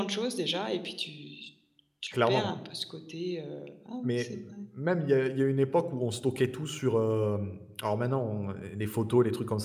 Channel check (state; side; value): identical; both; correlation 1.00